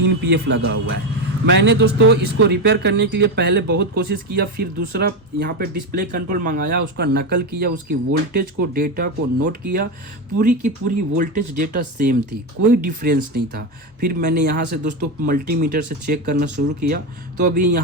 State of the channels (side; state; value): both; normal; correlation 0.13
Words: पीएफ लगा हुआ है। मैंने दोस्तों इसको रिपेयर करने के लिए पहले बहुत कोशिश किया, फिर दूसरा यहाँ पे डिस्प्ले कंट्रोल मंगाया, उसका नकल किया, उसकी वोल्टेज को डेटा को नोट किया। पूरी की पूरी वोल्टेज डेटा सेम थी, कोई डिफरेंस नहीं था। फिर मैंने यहाँ से दोस्तों मल्टीमीटर से चेक करना शुरू किया, तो अभी